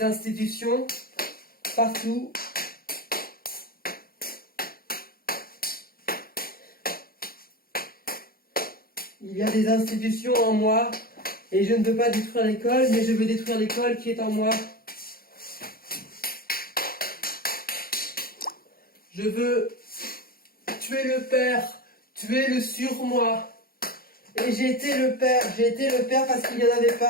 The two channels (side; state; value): right; late; 0.43 ms